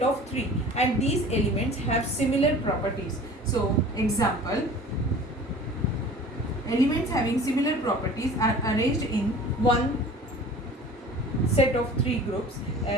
of three, and these elements have similar properties. So, example, elements having similar properties are arranged in one set of three groups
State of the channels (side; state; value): both; normal; correlation 0.43